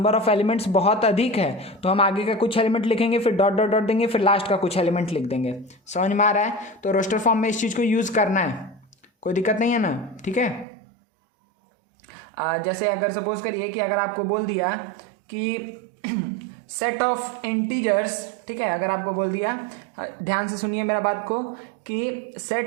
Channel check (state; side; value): drops out; left; at 10.7 s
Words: ऑफ एलिमेंट्स बहुत अधिक है तो हम आगे का कुछ एलिमेंट लिखेंगे, फिर डॉट डॉट डॉट देंगे, फिर लास्ट का कुछ एलिमेंट लिख देंगे। समझ में आ रहा है? तो रोस्टर फॉर्म में इस चीज़ को यूज़ करना है, कोई दिक्कत नहीं है ना, ठीक है। जैसे अगर सपोज करिए कि अगर आपको बोल दिया कि सेट ऑफ इंटीजर्स, ठीक है, अगर आपको बोल दिया, ध्यान से सुनिए मेरा बात को, कि